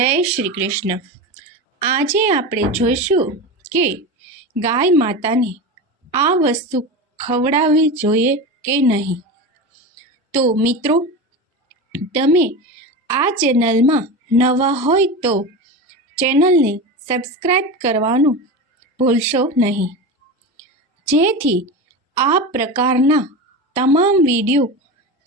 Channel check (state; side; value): normal; both; correlation 0.24